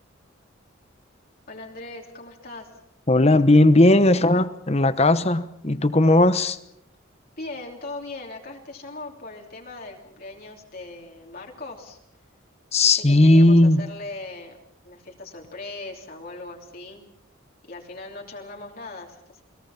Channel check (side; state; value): both; normal; correlation 0.67